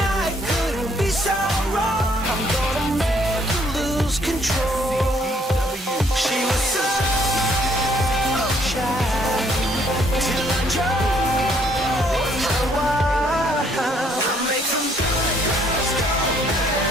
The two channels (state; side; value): normal; both; correlation 0.66